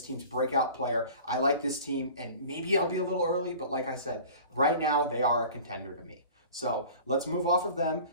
team's breakout player. I like this team, and maybe I'll be a little early, but like I said, right now they are a contender to me. So let's move off of them,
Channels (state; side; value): inverted; both; correlation -0.42